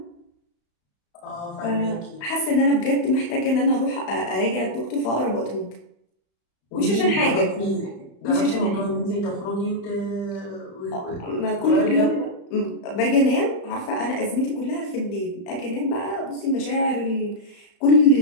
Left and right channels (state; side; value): late; right; 35 ms